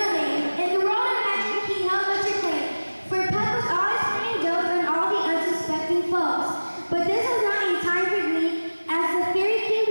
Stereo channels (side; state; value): both; inverted; correlation -1.00